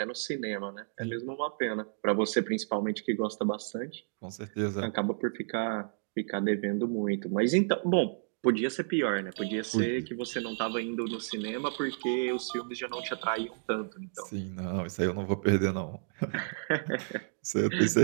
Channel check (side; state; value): left; silent; digital silence